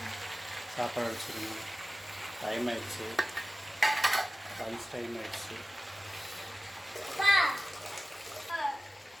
சாப்பாடு அடிச்சிருங்க. டைம் ஆயிடுச்சு. லஞ்ச் டைம் ஆயிடுச்சு.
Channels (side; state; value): both; normal; correlation 0.96